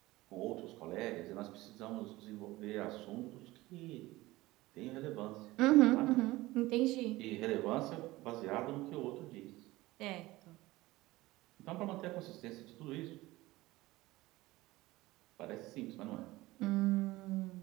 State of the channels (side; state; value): left; quieter; 19.0 dB